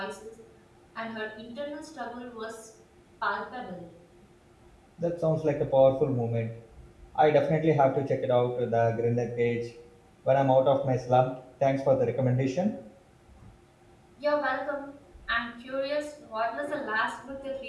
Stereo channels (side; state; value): both; identical; correlation 1.00